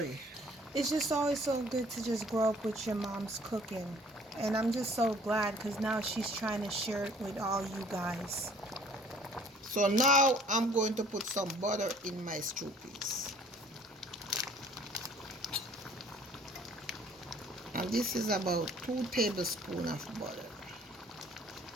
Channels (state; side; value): normal; both; correlation 0.55